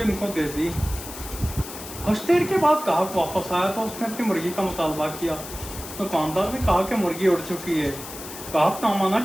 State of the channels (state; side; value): noise; left; hiss, 12 dB below the sound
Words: उनको दे दी। कुछ देर के बाद ग्राहक वापस आया तो उसने अपनी मुर्गी का मुतालबा किया। दुकानदार ने कहा कि मुर्गी उड़ चुकी है। ग्राहक ना माना